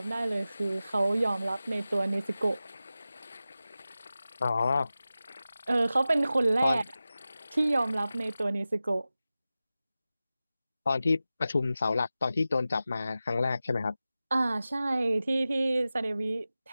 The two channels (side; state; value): both; inverted; correlation -0.95